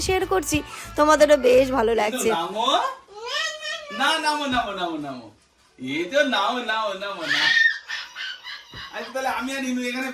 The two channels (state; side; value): identical; both; correlation 1.00